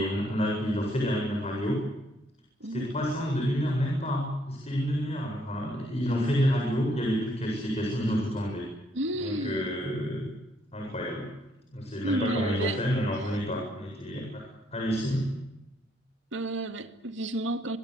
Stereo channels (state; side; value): normal; both; correlation 0.70